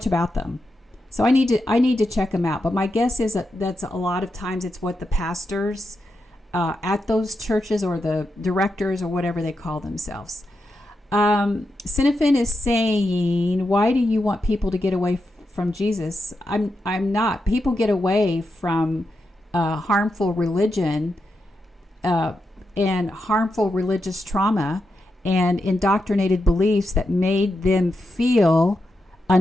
about them, so I need to check them out. But my guess is that's a lot of times it's what the pastors at those churches or the directors or whatever they call themselves. Cinefin is saying, why do you want people to get away from Jesus? I'm not. People get away from harmful religion and harmful religious trauma and indoctrinated beliefs that made them feel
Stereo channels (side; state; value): both; normal; correlation 0.86